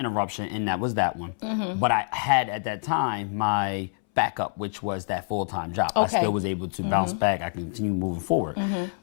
and that was that one. But I had at that time my backup, which was that full-time job. I still was able to bounce back. I continue moving forward.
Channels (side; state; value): right; silent; 61 dB below the other